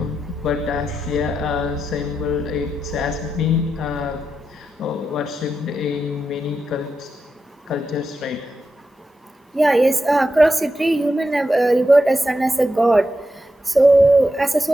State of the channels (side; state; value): both; normal; correlation 0.87